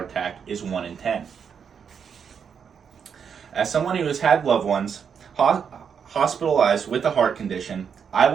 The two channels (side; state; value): left; quieter; 7.0 dB